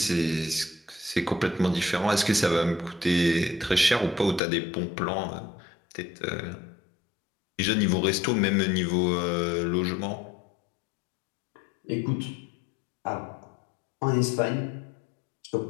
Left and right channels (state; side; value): drops out; right; at 4.4 s